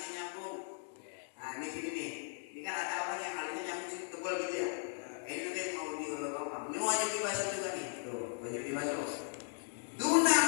nyambung. Nah, ini sini nih. Ini kan ada orang yang alisnya nyambung tebal gitu ya. Ini nanti mau diulur-ulur. Ini wajib dibasuh juga nih. Tuh, wajib dibasuh. Duna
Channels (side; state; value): right; silent; 53 dB below the other